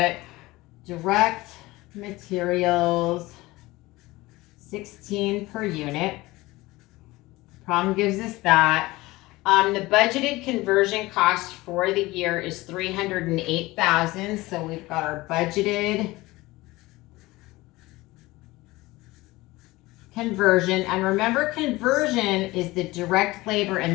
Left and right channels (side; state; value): right; quieter; 20.0 dB